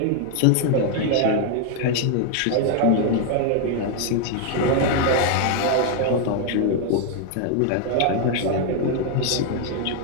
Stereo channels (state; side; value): different; both; correlation 0.00